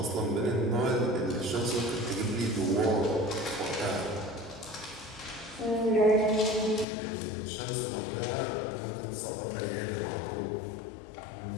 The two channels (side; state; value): right; drops out; at 6.9 s